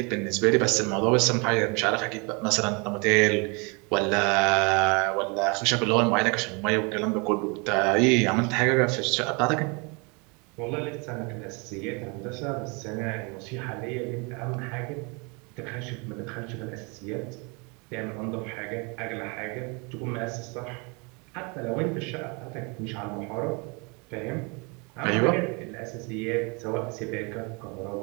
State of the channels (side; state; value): left; quieter; 30.9 dB